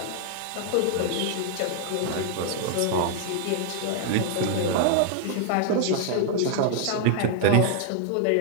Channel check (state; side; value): different; both; correlation 0.00